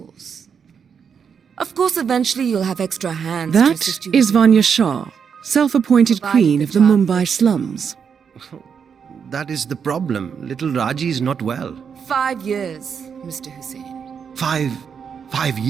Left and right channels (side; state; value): left; quieter; 6.8 dB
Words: Of course, eventually you'll have extra hands to That assist you. is Vanya Shah, self-appointed queen of the Mumbai slums. That is the problem. Little Raji is not well. 5 years, Mr. Hussain. 5